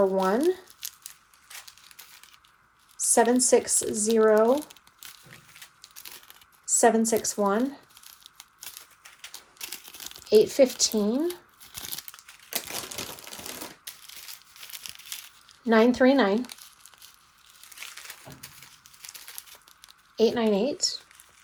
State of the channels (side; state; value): both; identical; correlation 1.00